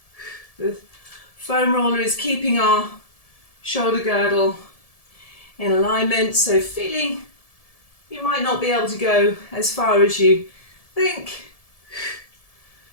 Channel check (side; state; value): right; late; 1.7 ms